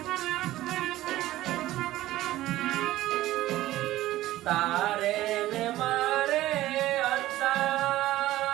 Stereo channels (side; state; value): left; quieter; 15.5 dB